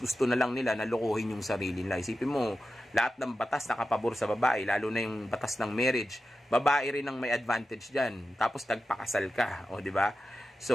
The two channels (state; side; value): normal; both; correlation 0.92